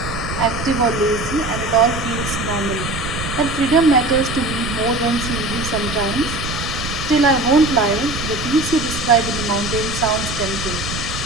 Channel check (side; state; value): right; noise; rumble, 7 dB below the sound